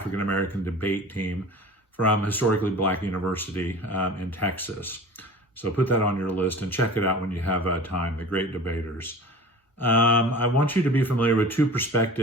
American debate team from historically Black university in Texas. So put that on your list and check it out when you have time. The Great Debaters. I want you to be familiar with two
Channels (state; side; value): normal; both; correlation 0.39